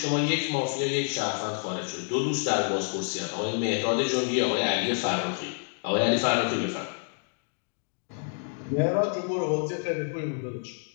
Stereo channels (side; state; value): right; silent; 59 dB below the other